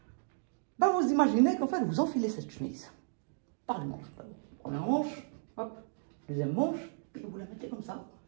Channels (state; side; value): silent; left; digital silence